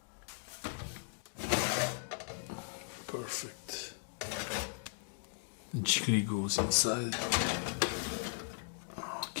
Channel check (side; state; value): right; silent; digital silence